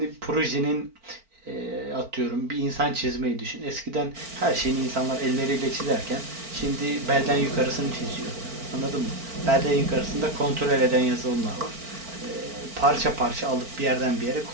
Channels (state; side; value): late; left; 4.4 ms